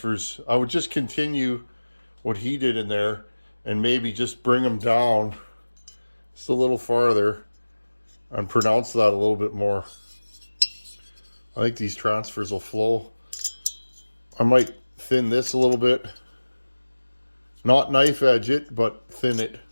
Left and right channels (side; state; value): both; inverted; correlation -1.00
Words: I would just continue what he did in there and maybe just bring them down just a little farther and pronounce that a little bit more. I think these transfers will flow. I might thin this a little bit. Not knife edge it, but thin it.